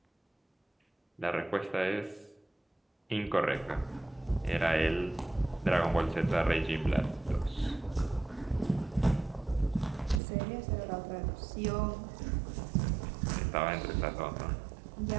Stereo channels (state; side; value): drops out; left; at 10.2 s